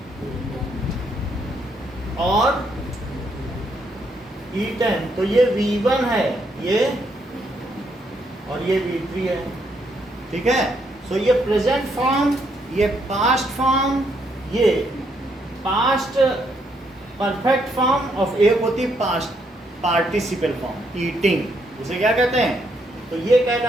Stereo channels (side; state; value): both; normal; correlation 0.74